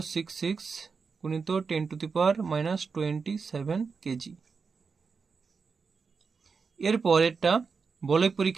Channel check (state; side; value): quieter; left; 5.2 dB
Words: গুণিত 10⁻27 কেজি। এরপর এটা বলয়